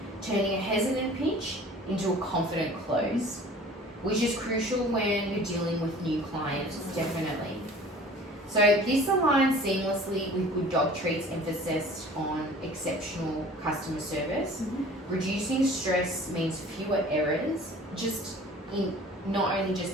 turning a hesitant pitch into a confident close, which is crucial when you're dealing with new clients, definitely. So this aligns seamlessly with Good Dog Treats' emphasis on exceptional customer service. Reducing stress means fewer errors, not only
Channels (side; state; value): both; normal; correlation 0.46